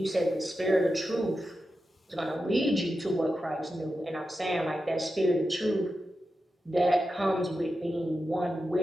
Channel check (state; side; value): normal; both; correlation 0.90